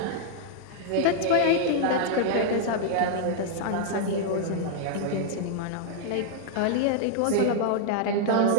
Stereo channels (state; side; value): different; both; correlation -0.01